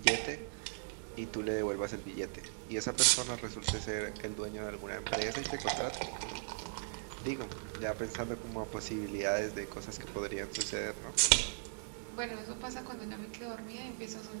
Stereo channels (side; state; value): left; silent; digital silence